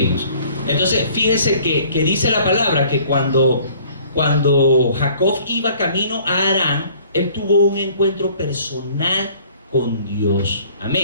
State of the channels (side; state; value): both; inverted; correlation -0.54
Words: Entonces, fíjese que dice la palabra que cuando Jacob iba camino a Harán, él tuvo un encuentro personal con Dios.